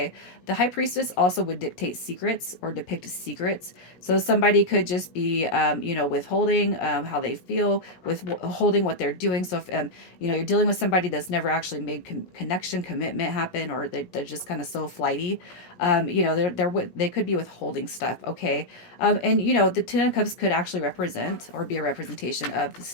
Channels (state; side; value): late; right; 17 ms